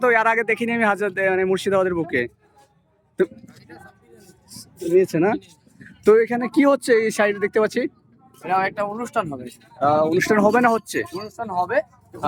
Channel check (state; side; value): identical; both; correlation 1.00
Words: তো এর আগে দেখিনি আমি মানে মুর্শিদাবাদের বুকে। তো নিয়েছে না? তো এখানে কি হচ্ছে এই সাইডে দেখতে পাচ্ছি? এটা একটা অনুষ্ঠান হবে। অনুষ্ঠান হবে না হচ্ছে? অনুষ্ঠান হবে,